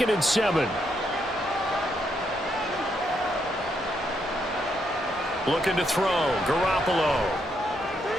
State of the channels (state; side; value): normal; both; correlation 0.77